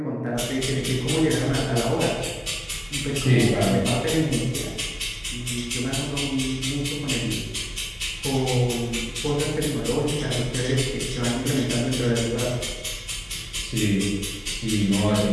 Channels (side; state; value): both; identical; correlation 1.00